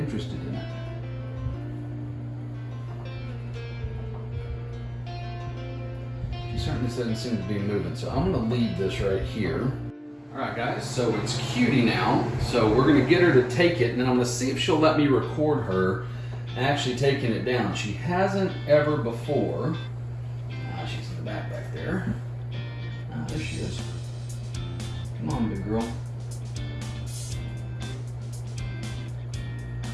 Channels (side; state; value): both; identical; correlation 1.00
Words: in it. She certainly doesn't seem to be moving, so I'm gonna leave this right here. All right, guys, so it's Cutie now. So we're gonna get her to take it, and then I'm gonna see if she'll let me record her actually taking it down. She hasn't ever before. She's in the back there. There she is. Come on, big girl.